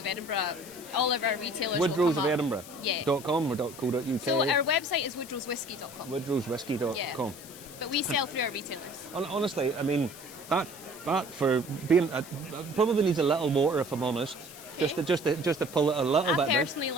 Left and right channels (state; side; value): noise; left; hiss, 17 dB below the sound